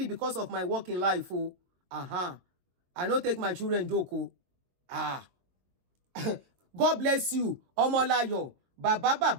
because of my work in life. I don't take my children joke. God bless you. Omolayo. Baba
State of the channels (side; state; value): left; late; 22 ms